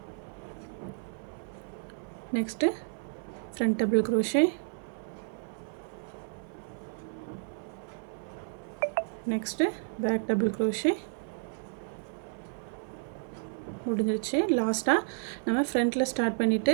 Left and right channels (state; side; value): silent; left; 57 dB below the other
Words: next front double crochet, next back double crochet. முடிஞ்சிருச்சு. லாஸ்ட்டாக நம்ம ஃப்ரண்ட்டில் ஸ்டார்ட்